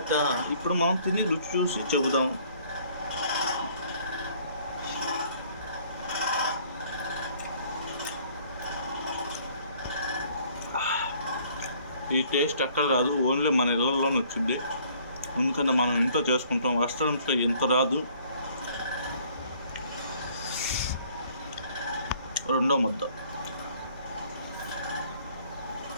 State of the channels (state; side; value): inverted; both; correlation -0.59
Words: ఇప్పుడు మనం తిని రుచి చూసి చెబుదాం. ఈ టేస్ట్ ఎక్కడ రాదు, ఓన్లీ మన ఇళ్ళల్లోనే వచ్చింది. ఎందుకంటే మనం ఇంట్లో చేసుకుంటాం, రెస్టారెంట్లో ఎంత రాదు. రెండో ముద్ద.